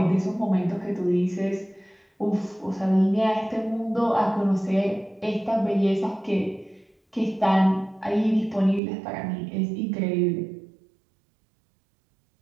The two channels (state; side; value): drops out; left; at 8.8 s